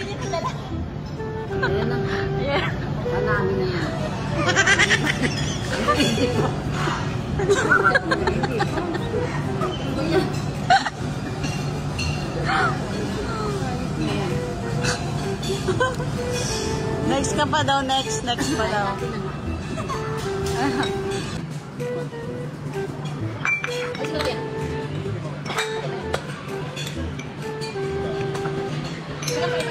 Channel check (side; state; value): both; identical; correlation 1.00